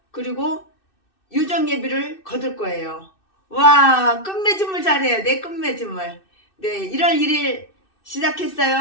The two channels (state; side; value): late; right; 2.6 ms